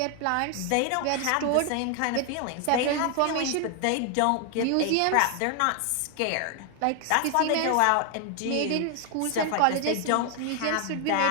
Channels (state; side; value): different; both; correlation 0.00